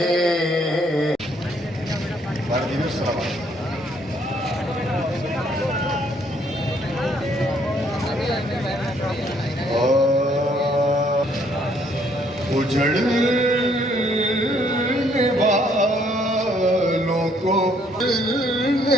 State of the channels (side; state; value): both; normal; correlation 0.67